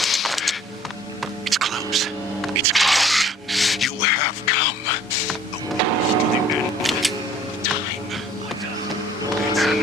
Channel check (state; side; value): normal; both; correlation 0.54